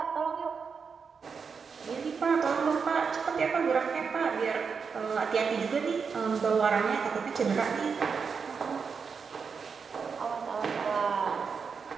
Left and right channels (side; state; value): left; quieter; 5.7 dB